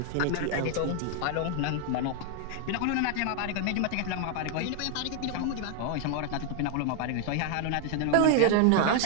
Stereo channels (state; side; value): different; both; correlation 0.00